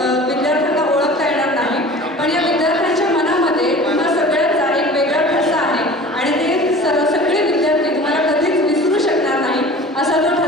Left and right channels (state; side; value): normal; both; correlation 0.41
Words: विद्यार्थ्यांना ओळखता येणार नाही, पण या विद्यार्थ्यांच्या मनामध्ये तुम्हा सगळ्यांचा एक वेगळा ठसा आहे आणि ते सगळे विद्यार्थी तुम्हाला कधीच विसरू शकणार नाही असा तो